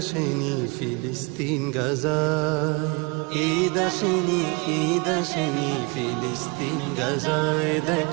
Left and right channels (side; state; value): left; quieter; 29.4 dB